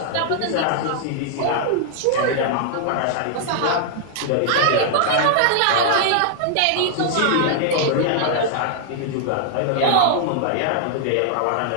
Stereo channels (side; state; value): both; different; correlation -0.01